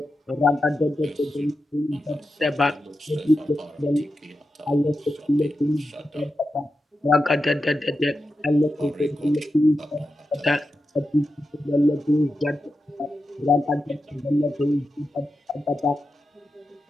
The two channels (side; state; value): both; normal; correlation 0.90